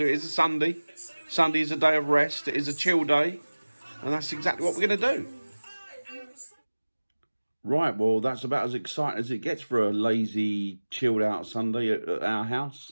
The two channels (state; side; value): inverted; both; correlation -1.00